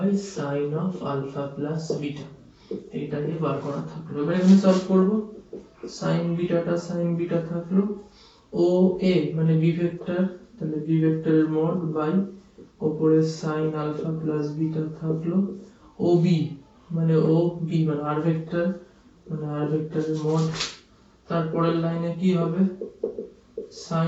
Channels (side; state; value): both; identical; correlation 1.00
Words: sin of alpha plus beta, এইটাকে বার করা থাকলো। এবার এখানে সলভ করব, sin বিটা থাকলো, ও এ মানে b ভেক্টর, তাহলে b ভেক্টরের মড বাই উপরে sin alpha plus beta থাকলো, ও বি মানে r ভেক্টর, মানে r ভেক্টরের মড, তারপরের লাইনে কি হবে,